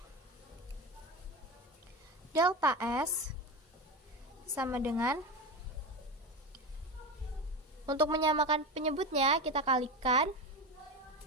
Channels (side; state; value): both; normal; correlation 0.21